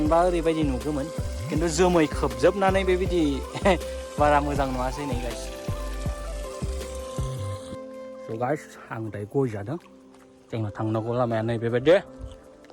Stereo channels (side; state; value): both; identical; correlation 1.00